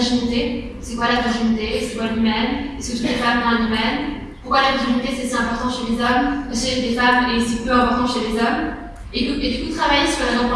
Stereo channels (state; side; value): identical; both; correlation 1.00